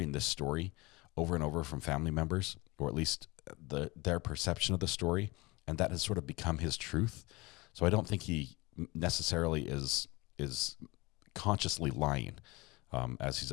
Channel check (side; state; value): right; quieter; 23.5 dB